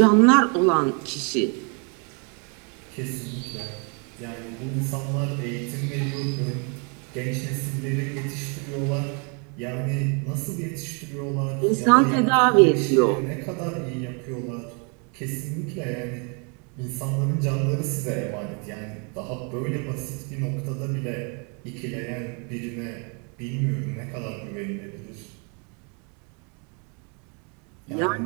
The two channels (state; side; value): quieter; left; 36.3 dB